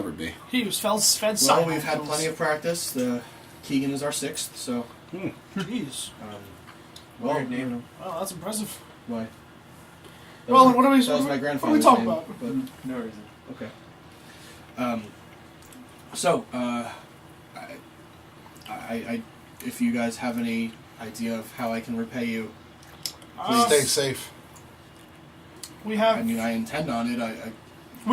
be. He was fed Well, side we've had plenty of practice. Keegan is our sixth, so Jeez. well, Weird name. Oh, that's impressive. why? Well, what are we, that was my what are we grandfather's talking name, about? But, No reason. okay. So, I, if you guys have any idea of how I can repay you, Stay safe. We have I mean, I intend on it.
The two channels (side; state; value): both; identical; correlation 1.00